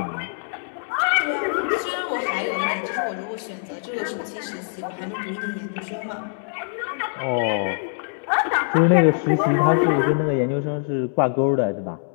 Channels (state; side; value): silent; right; digital silence